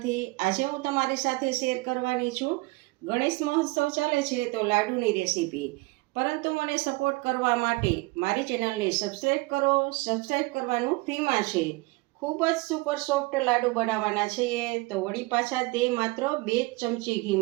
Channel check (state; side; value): quieter; left; 23.8 dB